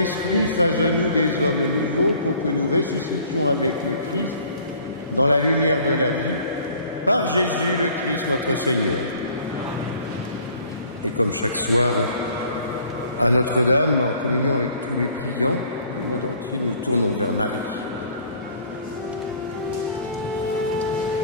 fasse de nous des hommes nouveaux pour que nous ressuscitions avec le Christ dans la lumière de la vie, par Jésus le Christ notre Seigneur. Et comme chaque soir, à Notre-Dame, en communion avec tous les priants du monde entier, nous nous tournons vers Marie.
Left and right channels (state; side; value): inverted; both; correlation -0.54